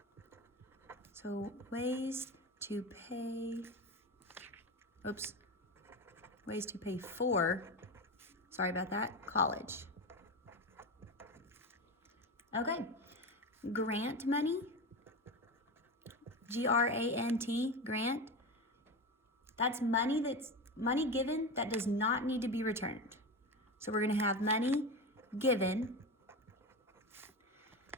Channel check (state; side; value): normal; both; correlation 0.22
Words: So ways to pay for, sorry about that, college. Okay, grant money, G-R-A-N-T, grant. That's money given that does not need to be returned. So we're gonna have money given